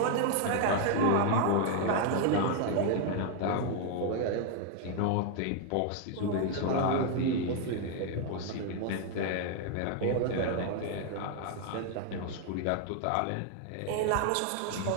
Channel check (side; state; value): both; different; correlation 0.00